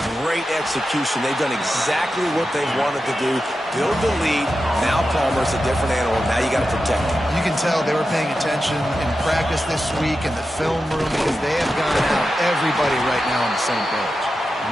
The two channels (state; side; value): normal; both; correlation 0.91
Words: great execution. They've done exactly what they wanted to do. Build the lead. Now Palmer's a different animal. Now you got to protect him. You can tell they were paying attention in practice this week in the film room because they have gone out everybody right now on the same page.